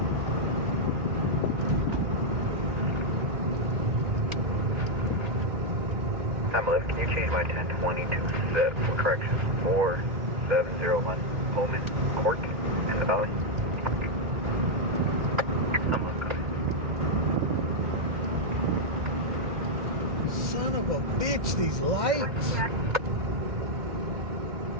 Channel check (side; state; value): left; late; 2.1 ms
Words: Pamela, can you change my 1020 to set for correction 4701 Moment Court in the Valley? Son of a bitch, these lights.